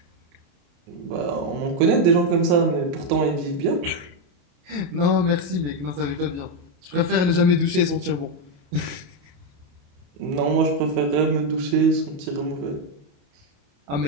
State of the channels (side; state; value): left; late; 28 ms